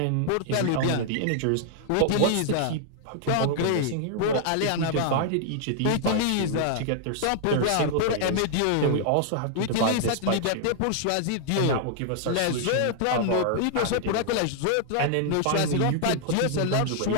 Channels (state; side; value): different; both; correlation -0.01